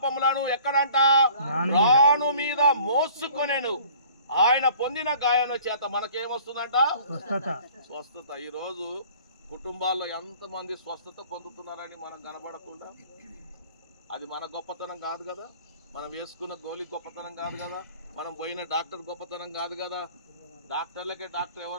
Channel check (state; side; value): inverted; both; correlation -0.51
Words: ఎక్కడంట రాను మీద మోసుకొనేను. ఆయన పొందిన గాయముల చేత మనకేమొస్తుందంట? స్వస్థత. ఈ రోజు కుటుంబాల్లో ఎంతమంది స్వస్థత పొందుతున్నారని మనం కనబడకుండా, అది మన గొప్పతనం కాదు కదా, మనం వేసుకున్న గోలి గొప్పతనం కాదు కదా, మనం పోయిన డాక్టర్ గొప్పతనం కాదు కదా. డాక్టర్లకే డాక్టర్